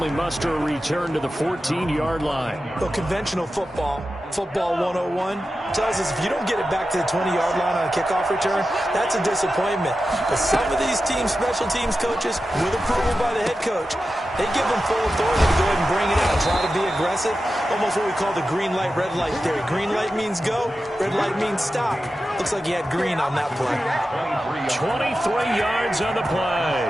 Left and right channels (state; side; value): normal; both; correlation 0.92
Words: muster a return to the 14-yard line. Well, conventional football 101, tells us if you don't get it back to the 20-yard line on a kickoff return, that's a disappointment. But some of these teams, special teams coaches, with approval by the head coach, they give them full authority to go ahead and bring it out, try to be aggressive, almost what we call the green light, red light theory. Green light means go, red light means stop. Looks like he had green on that play. 23 yards on the play.